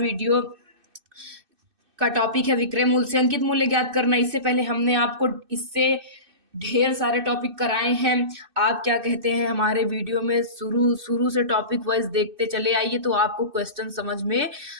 का टॉपिक है विक्रय मूल्य से अंकित मूल्य ज्ञात करना। इससे पहले हमने आपको इससे ढेर सारे टॉपिक कराए हैं। आप क्या कहते हैं, हमारे वीडियो में शुरू शुरू से टॉपिक वाइज देखते चले आइए, तो आपको क्वेश्चन समझ में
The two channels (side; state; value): left; late; 2.6 ms